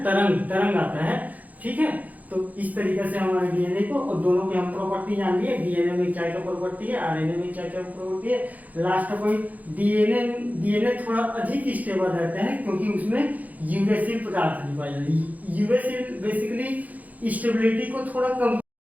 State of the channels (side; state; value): left; late; 0.078 ms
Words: तरंग आता है। ठीक है, तो इस तरीके से हमारे डीएनए को और दोनों की हम प्रॉपर्टी जान लिए, डीएनए में क्या क्या प्रॉपर्टी है, आरएनए में क्या क्या प्रॉपर्टी है। लास्ट पॉइंट, डीएनए थोड़ा अधिक स्टेबल रहता है क्योंकि उसमें यूरेसिल पदार्थ नहीं पाया जाता है। यूरेसिल बेसिकली स्टेबिलिटी को थोड़ा कम